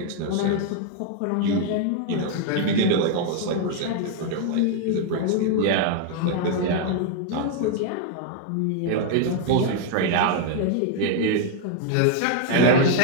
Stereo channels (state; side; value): different; both; correlation 0.00